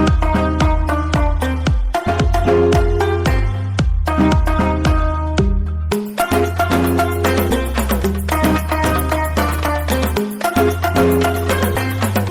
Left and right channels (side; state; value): both; identical; correlation 1.00